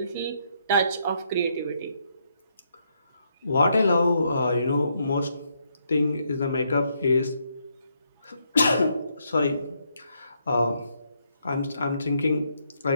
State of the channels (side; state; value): both; inverted; correlation -0.76